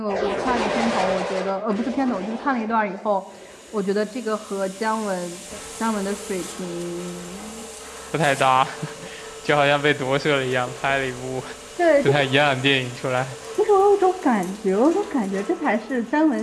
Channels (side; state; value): both; identical; correlation 1.00